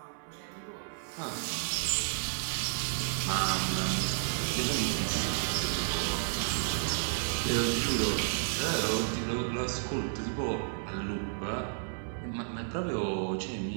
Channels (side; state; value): left; silent; 56 dB below the other